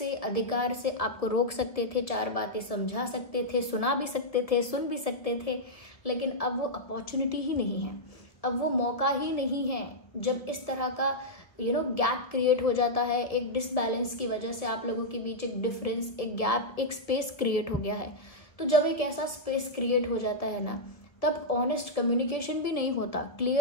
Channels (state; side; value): late; right; 1.1 ms